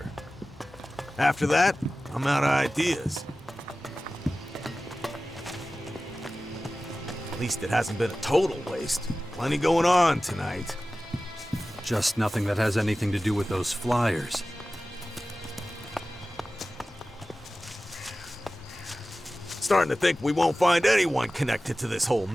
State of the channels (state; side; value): normal; both; correlation 0.96